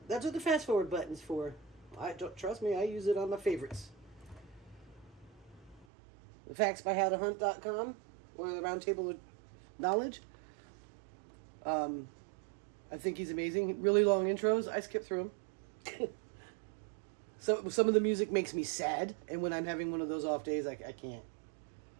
that's what the fast forward button's for. I don't trust me, I use it on my favorites. The factsbyhowtohunt.com or the Roundtable of Knowledge. I think he's amazing. Really long intros. I skip through them. So some of the music makes me sad, and when I'm having one of those off days, I can't.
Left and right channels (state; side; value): drops out; left; at 5.9 s